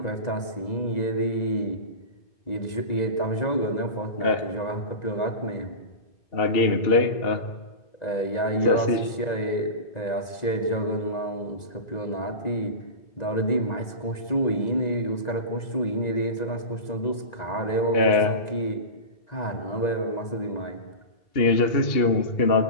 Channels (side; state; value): right; late; 1.9 ms